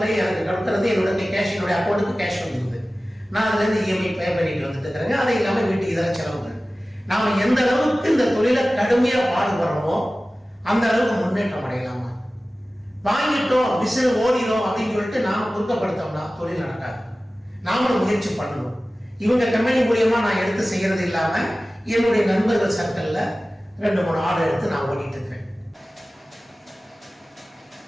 எனக்கு கொடுக்குறது என்னுடைய கேஷ், என்னுடைய அக்கௌண்ட்டுக்கு கேஷ் வந்துடுது. நான் அதுலேருந்து இஎம்ஐ பே பண்ணிட்டு வந்துட்டு இருக்கிறேங்க. அது இல்லாமல் வீட்டுக்கு இதெல்லாம் செலவுகள். நாம் எந்த அளவுக்கு இந்த தொழிலை கடுமையாக பாடுபடுறோமோ அந்த அளவுக்கு முன்னேற்றம் அடையலாமா? வாங்கிட்டோம் மிஷின் ஓடிடும் அப்படின்னு சொல்லிட்டு நாம குறுக்கப்படுத்தோம்னா தொழில் நடக்காது. நாமளும் முயற்சி பண்ணணும். இவங்க கம்பெனி மூலியமா நான் எடுத்து செய்யறது இல்லாம என்னுடைய நண்பர்கள் சர்க்கிள்ல 2-3 ஆர்டர் எடுத்து நான் ஓடிட்டு இருக்கேன்.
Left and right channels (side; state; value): both; normal; correlation 0.96